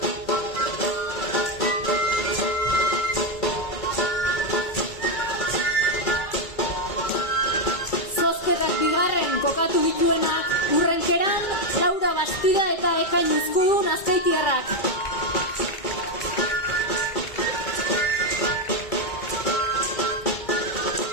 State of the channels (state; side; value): late; right; 2.4 ms